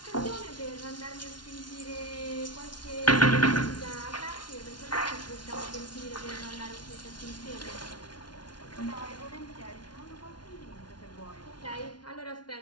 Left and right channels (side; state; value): right; late; 0.70 ms